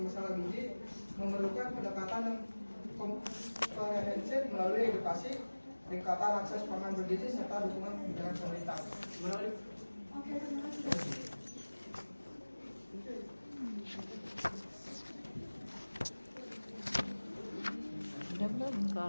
masalah gizi memerlukan pendekatan yang komprehensif melalui edukasi, peningkatan akses pangan bergizi, serta dukungan kebijakan pemerintah. Udah belum?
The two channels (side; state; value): both; inverted; correlation -1.00